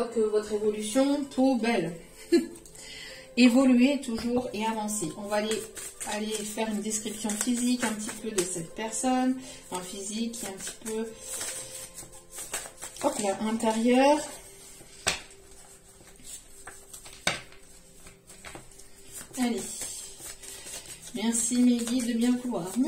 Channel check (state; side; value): identical; both; correlation 1.00